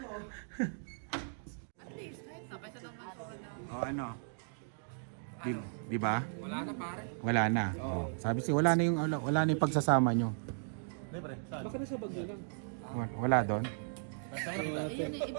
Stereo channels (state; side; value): silent; left; digital silence